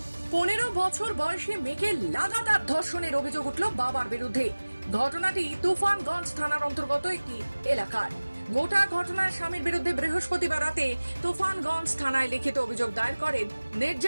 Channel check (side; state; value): both; inverted; correlation -1.00